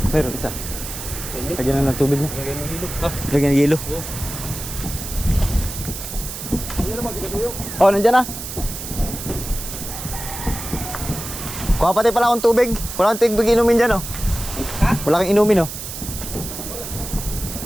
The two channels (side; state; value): right; noise; hiss, 8 dB below the sound